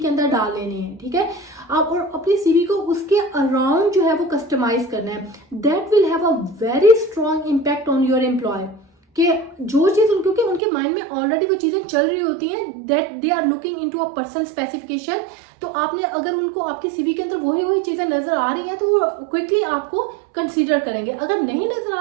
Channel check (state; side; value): drops out; left; at 10.6 s